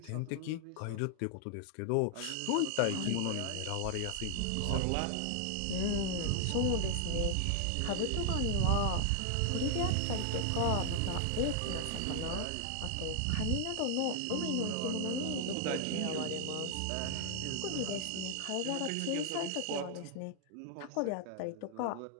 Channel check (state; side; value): different; both; correlation 0.00